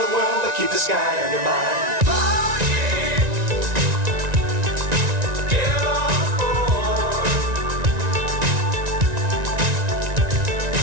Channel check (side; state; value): left; late; 1.9 ms